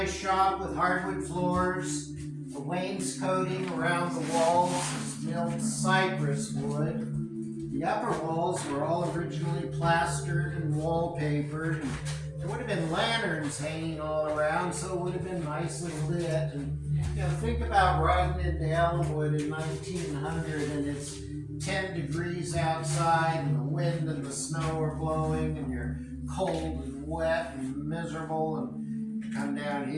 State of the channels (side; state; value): both; identical; correlation 1.00